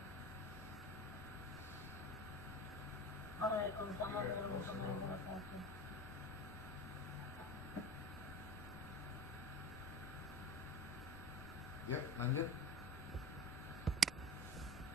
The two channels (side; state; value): both; normal; correlation 0.34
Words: Waalaikumsalam warahmatullahi wabarakatuh. Ya, lanjut.